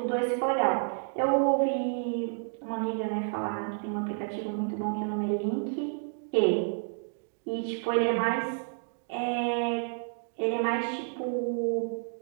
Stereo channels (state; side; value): silent; left; 58 dB below the other